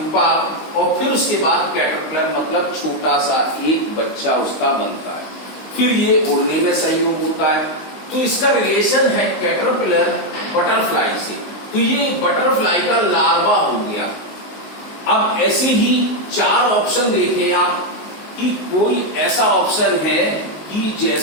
और फिर उसके बाद कैटरपिलर मतलब छोटा सा एक बच्चा उसका बनता है। फिर ये उड़ने में सहयोग होता है। तो इसका रिलेशन है कैटरपिलर बटरफ्लाई से। तो ये बटरफ्लाई का लार्वा हो गया। अब ऐसे ही 4 ऑप्शन देखें आप कि कोई ऐसा ऑप्शन है कि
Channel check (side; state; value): right; late; 19 ms